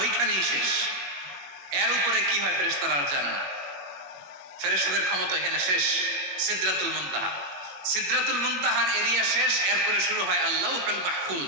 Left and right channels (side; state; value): left; late; 21 ms